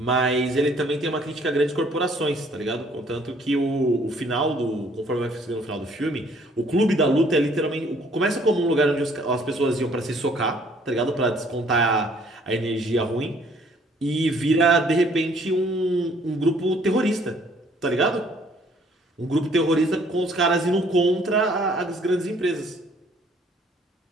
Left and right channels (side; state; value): both; normal; correlation 0.61